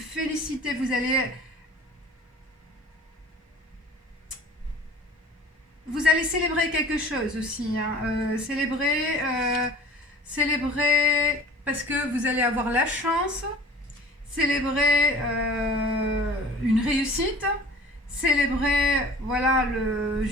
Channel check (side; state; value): both; normal; correlation 0.45